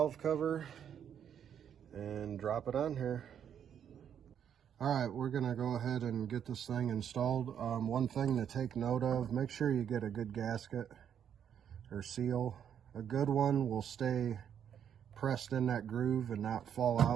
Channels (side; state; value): left; quieter; 8.8 dB